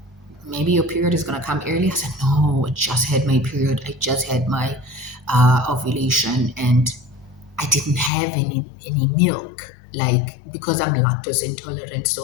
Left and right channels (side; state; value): right; drops out; at 8.1 s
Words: maybe your period is going to come early. I said, no, I just had my period. I just had my ovulation and I didn't have any milk, like, because I'm lactose intolerant.